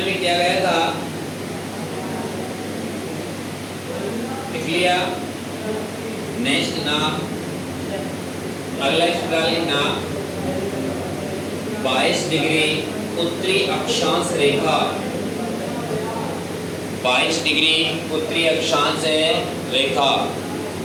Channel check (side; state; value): both; identical; correlation 1.00